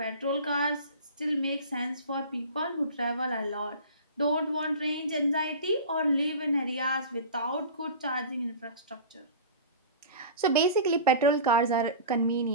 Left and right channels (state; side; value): inverted; both; correlation -0.36